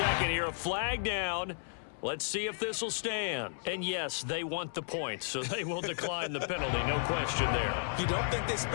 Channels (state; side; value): silent; right; 55 dB below the other